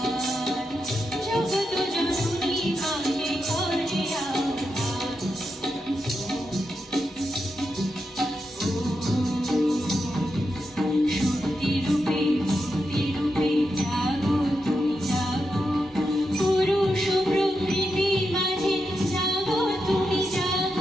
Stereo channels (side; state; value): both; normal; correlation 0.86